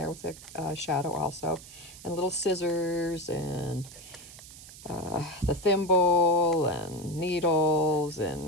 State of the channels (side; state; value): right; noise; hiss, 17 dB below the sound